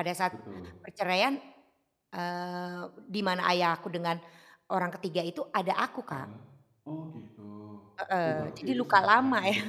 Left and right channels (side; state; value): both; identical; correlation 1.00